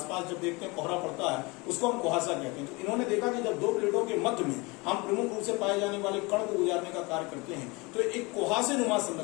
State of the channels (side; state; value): right; quieter; 25.8 dB